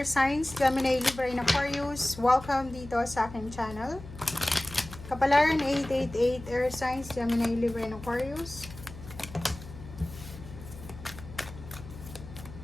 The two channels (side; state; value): left; noise; hum, 14 dB below the sound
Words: Signs, Gemini, Libra, and Aquarius. Welcome dito sa aking channel. Kapalaran 888 Earth Signs, Gemini, Libra, and Aquarius.